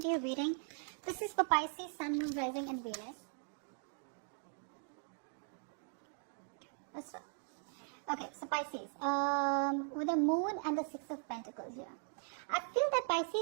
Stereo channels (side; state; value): left; silent; 51 dB below the other